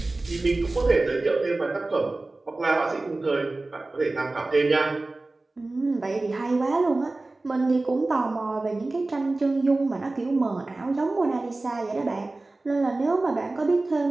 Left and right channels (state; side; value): quieter; left; 3.1 dB